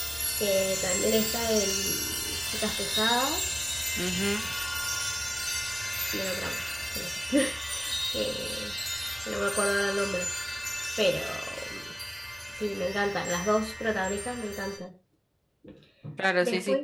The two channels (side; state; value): both; identical; correlation 1.00